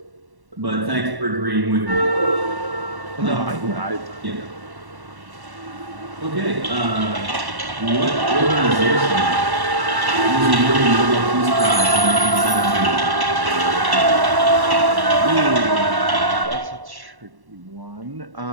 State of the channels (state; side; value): late; left; 1.1 ms